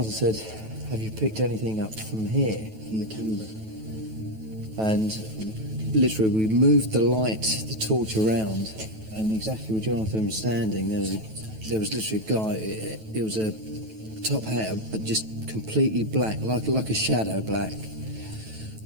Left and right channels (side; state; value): left; late; 9.2 ms